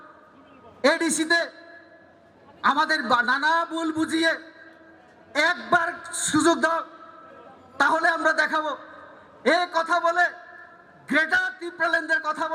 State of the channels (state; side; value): identical; both; correlation 1.00